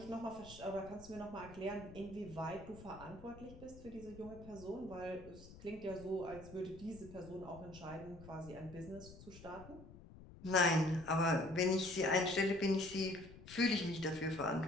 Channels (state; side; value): noise; left; rumble, 17 dB below the sound